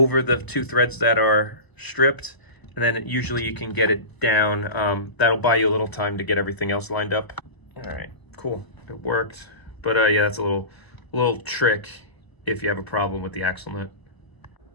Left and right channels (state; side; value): late; right; 1.0 ms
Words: the two threads that are stripped. And then usually you can get it down. That'll buy you a little time to get everything else lined up. All right, cool, it worked. But yeah, that's a little trick if you have a problem with the axle nut.